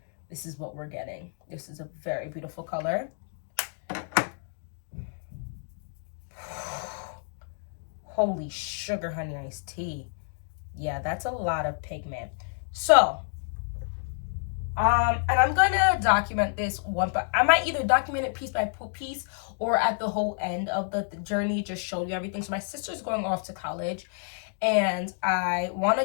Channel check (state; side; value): silent; right; digital silence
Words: what we're getting. This is a very beautiful color. Holy sugar honey iced tea. Yeah, that's a lot of pigment. So, and I'm gonna document this one, but I might either document it piece by piece or at the whole end of the journey, just show you everything. So my sister's going off to college, and I want